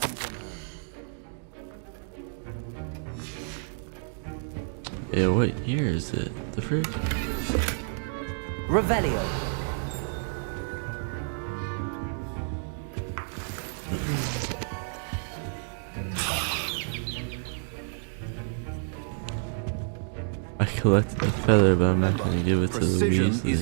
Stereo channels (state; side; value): silent; left; 59 dB below the other